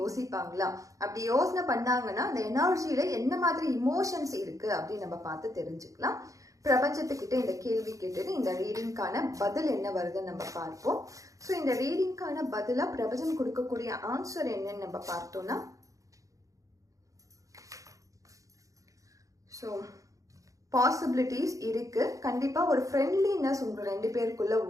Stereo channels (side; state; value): left; late; 0.16 ms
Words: அப்படி யோசனை பண்ணாங்கன்னா அந்த எனர்ஜியில என்ன மாதிரி இமோஷன்ஸ் இருக்கு அப்படின்னு நம்ம பார்த்து தெரிஞ்சுக்கலாம். பிரபஞ்சத்துக்கிட்ட இந்த கேள்வி கேட்டுட்டு இந்த ரீடிங்கான பதில் என்ன வருதுன்னு நம்ம பார்ப்போம். ஸோ இந்த ரீடிங்கான பதிலா பிரபஞ்சம் கொடுக்கக்கூடிய ஆன்சர் என்னன்னு நம்ம பார்த்தோம்னா, ஸோ பாசிபிலிட்டிஸ் இருக்கு. கண்டிப்பா ஒரு ஃப்ரெண்ட்லினஸ் உங்க ரெண்டு பேருக்குள்ள